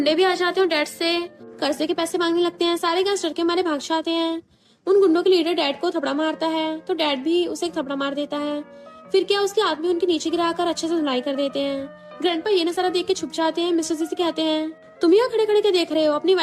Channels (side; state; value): both; identical; correlation 1.00